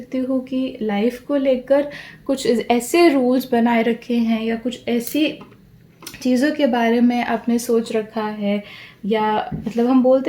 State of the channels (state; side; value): identical; both; correlation 1.00